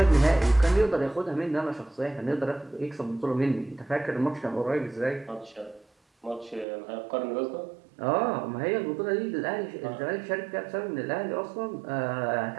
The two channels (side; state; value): left; drops out; at 6.7 s